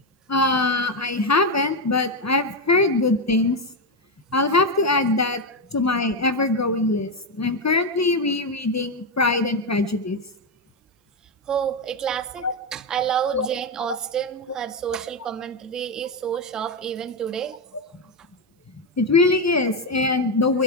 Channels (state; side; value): normal; both; correlation 0.08